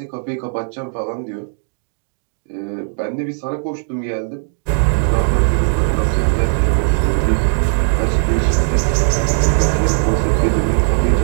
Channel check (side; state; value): left; silent; digital silence